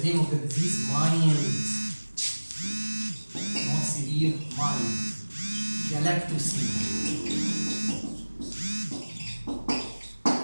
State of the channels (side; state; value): both; inverted; correlation -1.00